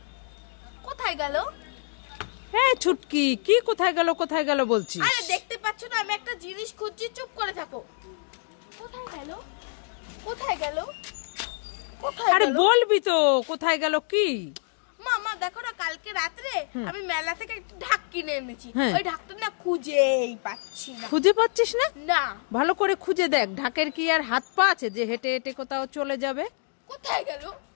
কোথায় গেল? এই ছুটকি, কি কোথায় গেল কোথায় গেল বলছিস? আরে দেখতে পাচ্ছ না আমি একটা জিনিস খুঁজছি, চুপ করে থাকো। কোথায় গেল? কোথায় গেল? কোথায় আরে গেল? বলবি তো কোথায় গেল কি? মামা দেখো না, কালকে রাত্রে আমি মেলা থেকে একটা ঢাক কিনে এনেছি। হ্যাঁ। ওই ঢাকটা না খুঁজেই পাচ্ছি না। খুঁজে পাচ্ছিস না? না। ভালো করে খুঁজে দেখ, ঢাকের কি আর হাত পা আছে যে হেঁটে হেঁটে কোথাও চলে যাবে? কোথায় গেল?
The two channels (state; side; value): silent; right; 60 dB below the other